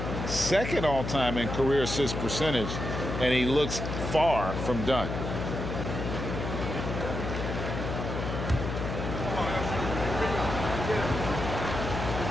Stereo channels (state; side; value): noise; left; hum, 4 dB below the sound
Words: second all-time in career assist percentage, and he looks far from done.